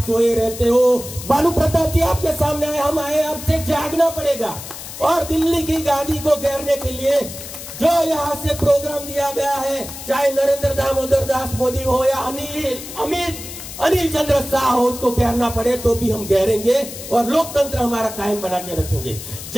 सोए रहते हो। बालू प्रताप जी आपके सामने आए, हम आए, आपसे जागना पड़ेगा। और दिल्ली की गादी को घेरने के लिए जो यहाँ से प्रोग्राम दिया गया है, चाहे नरेंद्र दामोदर दास मोदी हो या अनिल चंद्र शाह हो, उसको घेरना पड़े तो भी हम घेरेंगे और लोकतंत्र हमारा कायम बना के रखेंगे।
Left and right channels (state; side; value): noise; left; hiss, 11 dB below the sound